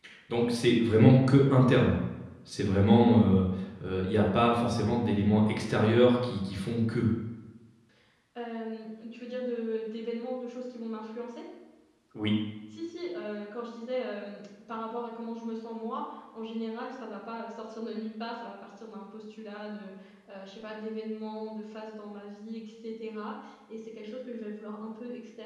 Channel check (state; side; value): identical; both; correlation 1.00